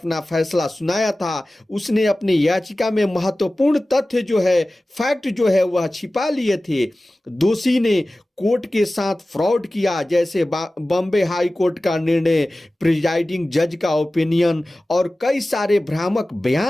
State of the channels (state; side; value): normal; both; correlation 0.96